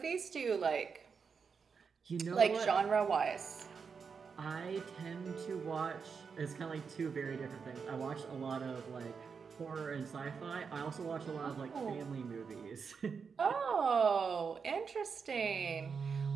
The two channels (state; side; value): quieter; left; 5.8 dB